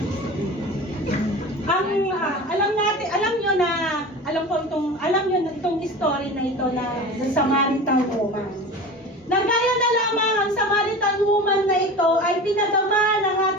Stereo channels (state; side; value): normal; both; correlation 0.33